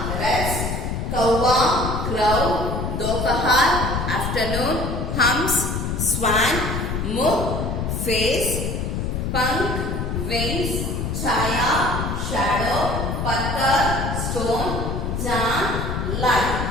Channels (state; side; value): noise; left; rumble, 2 dB below the sound